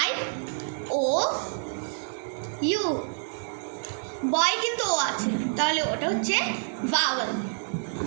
I, O, U। বয় কিন্তু ও আছে, তাহলে ওটা হচ্ছে ভাওয়েল।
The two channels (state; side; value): silent; left; digital silence